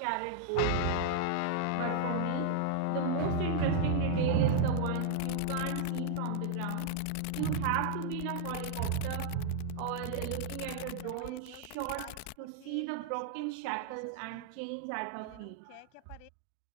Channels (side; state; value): both; different; correlation 0.00